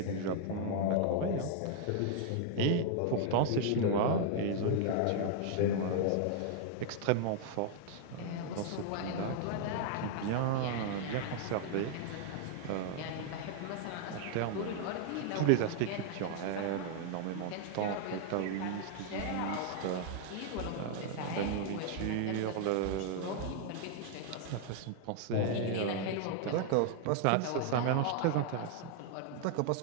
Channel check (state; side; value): different; both; correlation 0.00